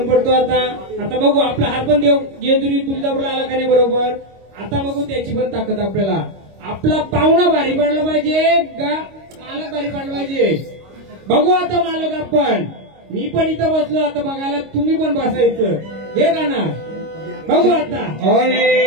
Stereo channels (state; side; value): late; left; 26 ms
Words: पडतो आता बघू आपला हात पण देव जेजुरी तुळजापूरला आला का नाही बरोबर आता बघू त्याची पण ताकद आपल्याला आपला पाहुणा भारी पडला पाहिजे का मालक भारी पडला पाहिजे बघू आता मालक आपण मी पण इथं बसलो आता बघायला तुम्ही पण बसायचं हे का ना बघू आता